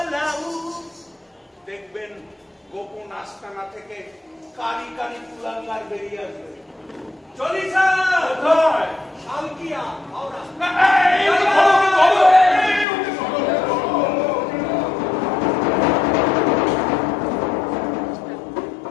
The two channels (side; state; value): right; drops out; at 12.9 s